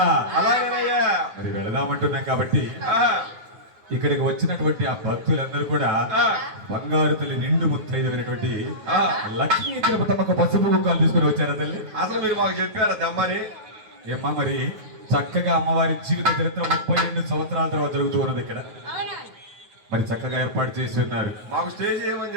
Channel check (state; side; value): late; left; 9.3 ms